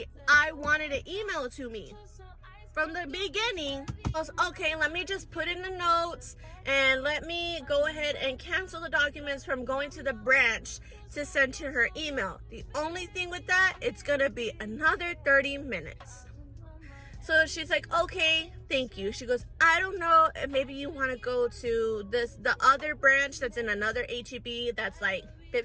I wanted to email to me from the beginning? I was, okay, let me just put in the notes and let me go ahead and cancel the documents from going to the branch to send to her email. The only thing with that, it's gonna be another 30 minutes. So she's like, okay, thank you. She goes, I don't know, maybe you want to go to the other branch that's in another HEB that's like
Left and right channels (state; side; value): identical; both; correlation 1.00